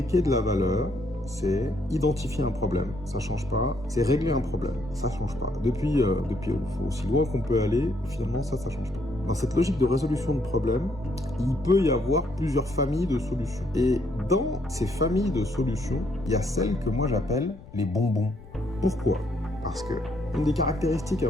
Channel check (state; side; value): noise; left; rumble, 19 dB below the sound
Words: de la valeur, c'est identifier un problème, ça change pas. C'est régler un problème, ça change pas. Depuis aussi loin qu'on peut aller, finalement, ça change pas. Dans cette logique de résolution de problèmes, il peut y avoir plusieurs familles de solutions. Et dans ces familles de solutions, il y a celles que moi j'appelle les bonbons. Pourquoi? Parce que une des caractéristiques un